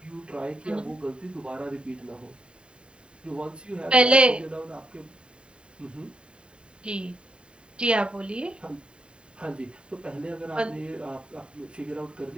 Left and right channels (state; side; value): late; left; 0.052 ms